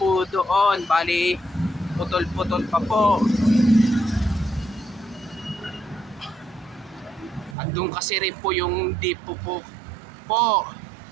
doon, bali putol-putol pa po. At doon kasi rin po yung depo po.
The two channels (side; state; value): left; drops out; at 7.6 s